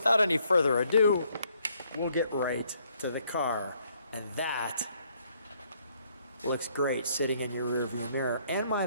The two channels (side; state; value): both; inverted; correlation -0.68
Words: any further ado, we'll get right to the car. And that looks great sitting in your rearview mirror. And might